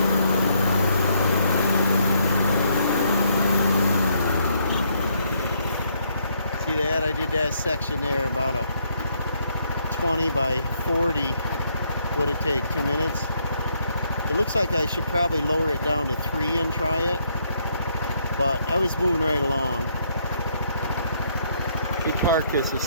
See that? I did that section there about a 20 by 40. Would it take 2 minutes? It looks like I should probably lower it down to 3 and try it, but I was moving right along. Let me park this a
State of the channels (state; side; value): inverted; both; correlation -0.72